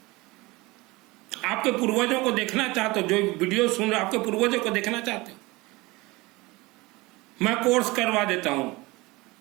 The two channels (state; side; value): quieter; left; 22.3 dB